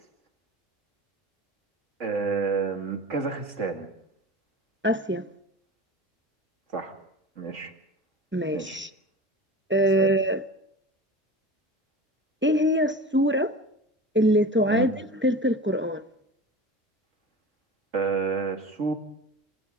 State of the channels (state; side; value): normal; both; correlation 0.34